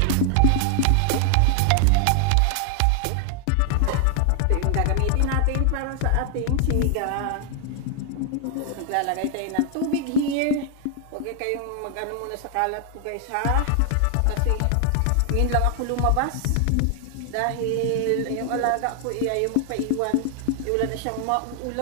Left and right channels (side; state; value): both; different; correlation 0.00